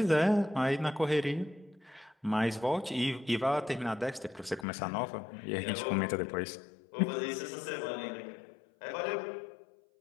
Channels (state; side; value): drops out; right; at 4.7 s